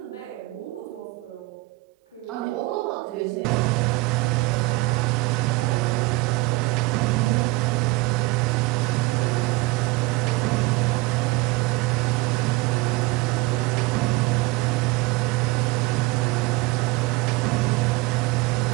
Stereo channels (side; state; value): left; quieter; 22.1 dB